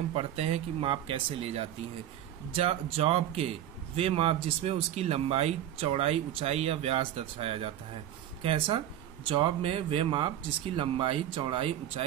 पढ़ते हैं कि माप कैसे ले जाती है। जॉब के वे माप जिसमें उसकी लंबाई, चौड़ाई, ऊंचाई या व्यास दर्शाया जाता है। कैसा? जॉब में वे माप जिसकी लंबाई, चौड़ाई,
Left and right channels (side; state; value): left; quieter; 11.6 dB